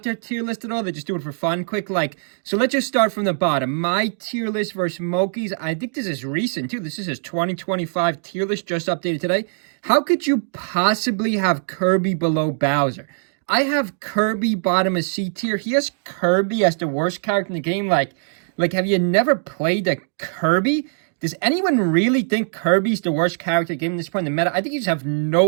their tier list at all. They just do it for fun, quick. So let's just start from the bottom. My tier list versus Moky's. I think this is recent, too. This is his 2025 tier list, just updated today. How could you possibly have Kirby below Bowser? I have Kirby bottom of C tier. He has Kirby as the worst character in the game. Like, have you never played a Kirby? Does anyone really think Kirby's the worst character in the game at this point in the meta? I think you just have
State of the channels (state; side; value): silent; left; digital silence